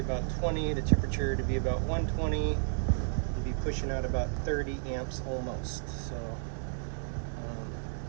20, the temperature to be about 120, and be pushing out about 30 amps almost. So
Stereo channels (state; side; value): silent; left; digital silence